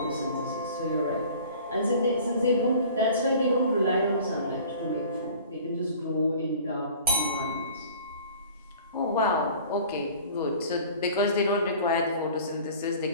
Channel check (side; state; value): both; inverted; correlation -0.46